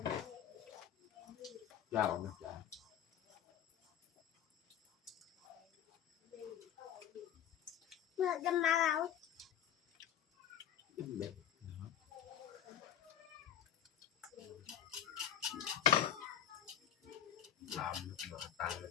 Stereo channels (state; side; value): quieter; right; 10.0 dB